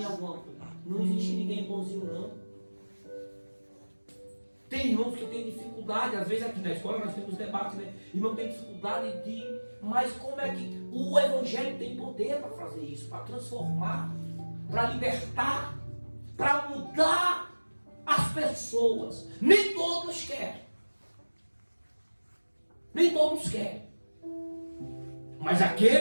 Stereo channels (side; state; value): both; inverted; correlation -1.00